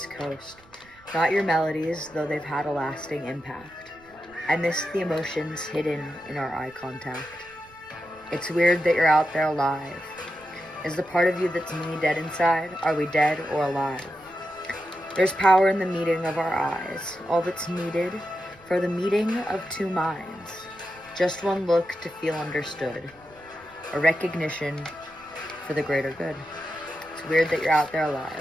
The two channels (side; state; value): right; noise; rumble, 27 dB below the sound